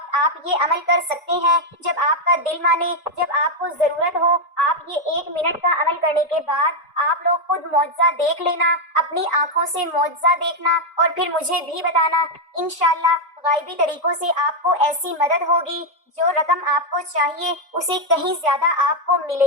آپ یہ عمل کر سکتے ہیں، جب آپ کا دل مانے، جب آپ کو ضرورت ہو۔ آپ یہ 1 منٹ کا عمل کرنے کے بعد آپ لوگ خود معجزہ دیکھ لینا، اپنی آنکھوں سے معجزہ دیکھنا اور پھر مجھے بھی بتانا۔ انشاءاللہ غائبی طریقوں سے آپ کو ایسی مدد ہوگی، جو رقم آپ کو چاہیے اسے کہیں زیادہ آپ کو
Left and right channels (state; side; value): normal; both; correlation 0.02